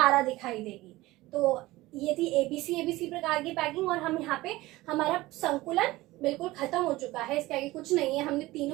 दिखाई देगी। तो ये थी एबीसी प्रकार की पैकिंग। और हम यहाँ पे हमारा संकुलन बिल्कुल खत्म हो चुका है, इसके आगे कुछ नहीं है, हमने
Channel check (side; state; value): left; quieter; 18.7 dB